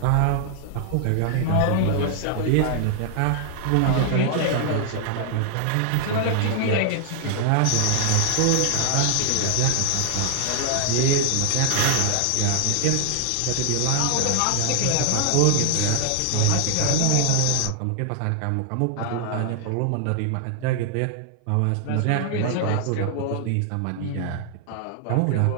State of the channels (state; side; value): different; both; correlation 0.00